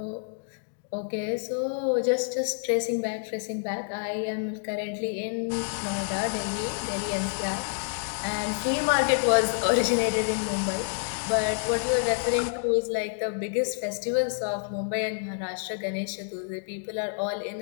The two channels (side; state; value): right; silent; digital silence